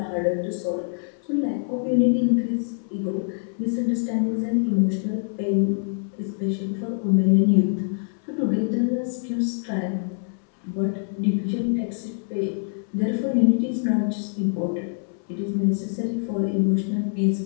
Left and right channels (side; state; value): right; silent; 62 dB below the other